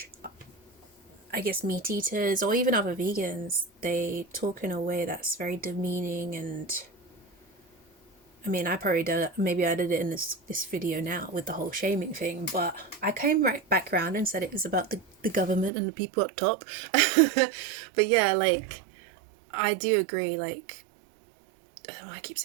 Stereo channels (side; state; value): left; drops out; at 15.7 s